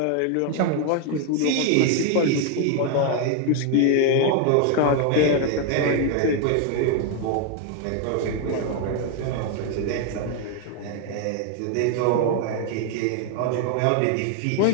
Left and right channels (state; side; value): different; both; correlation 0.01